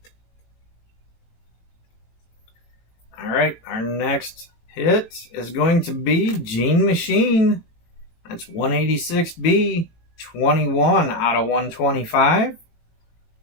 Alright, our next hit is going to be Gene Machine. That's 186B, 21 out of 125.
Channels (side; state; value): right; late; 18 ms